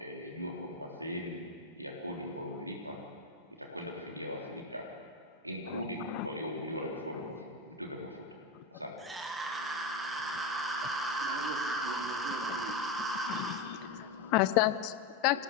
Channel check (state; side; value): quieter; right; 3.7 dB